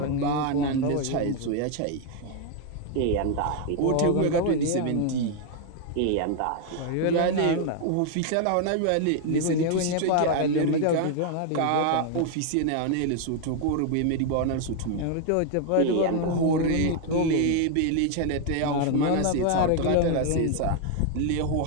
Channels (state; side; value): different; both; correlation 0.00